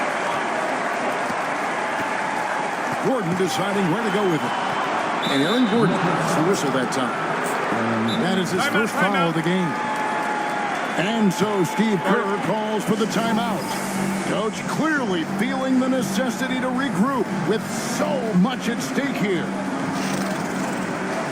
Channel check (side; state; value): both; identical; correlation 1.00